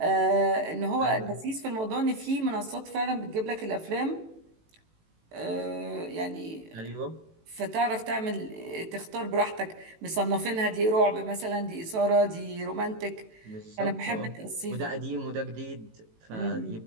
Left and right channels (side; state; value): left; late; 18 ms